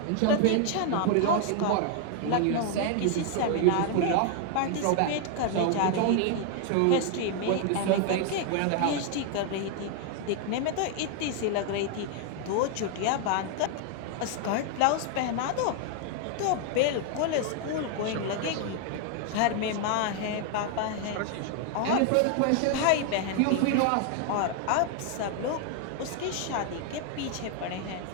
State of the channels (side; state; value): both; different; correlation 0.00